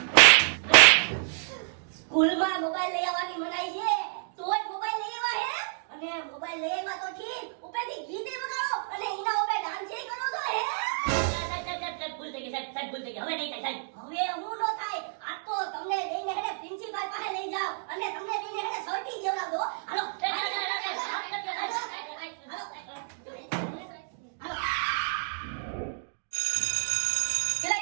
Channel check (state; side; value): silent; left; digital silence